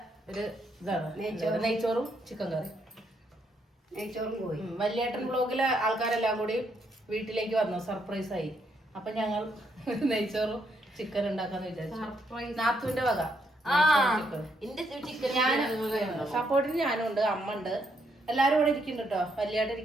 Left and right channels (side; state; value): both; normal; correlation 0.75